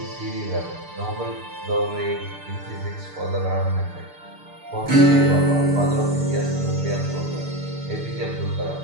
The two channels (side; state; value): left; late; 6.7 ms